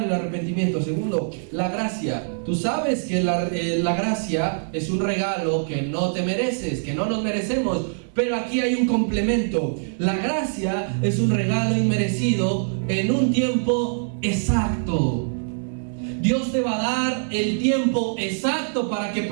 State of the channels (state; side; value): silent; left; 61 dB below the other